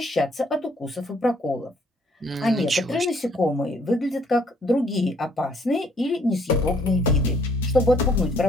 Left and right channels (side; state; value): both; normal; correlation 0.64